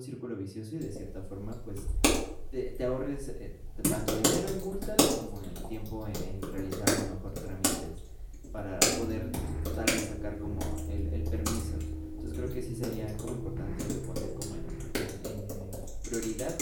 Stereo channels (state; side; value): identical; both; correlation 1.00